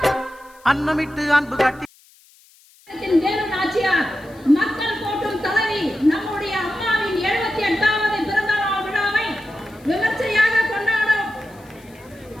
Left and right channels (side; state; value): left; noise; hiss, 28 dB below the sound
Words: அன்னமிட்டு அன்பு காட்டி மக்கள் போற்றும் தலைவி நம்முடைய அம்மாவின் 78வது பிறந்த நாள் விழாவை விமர்சையாக கொண்டாடும்.